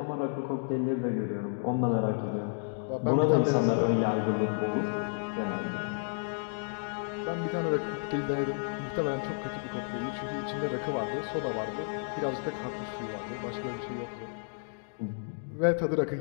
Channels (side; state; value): right; silent; digital silence